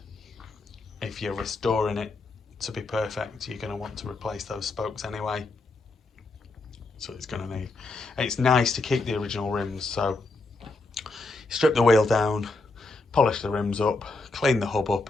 if you're restoring it to be perfect, you're going to want to replace those spokes anyway. So it's going to need. It's nice to keep the original rims, so strip the wheel down, polish the rims up, clean the hub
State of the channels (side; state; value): right; quieter; 3.4 dB